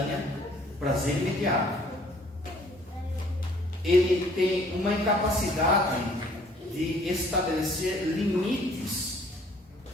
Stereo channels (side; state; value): both; normal; correlation 0.58